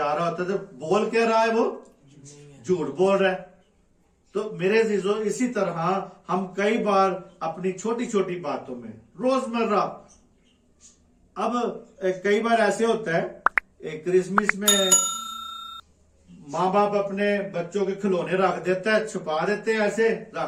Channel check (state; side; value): identical; both; correlation 1.00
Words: رہا ہوتا ہے۔ تو بول کیا رہا ہے وہ؟ جھوٹ بول رہا ہے۔ تو میرے عزیزو اسی طرح ہم کئی بار اپنی چھوٹی چھوٹی باتوں میں روزمرہ، اب کئی بار ایسے ہوتا ہے کرسمس میں ماں باپ اپنے بچوں کے کھلونے رکھ دیتا ہے، چھپا دیتے ہیں، ایسے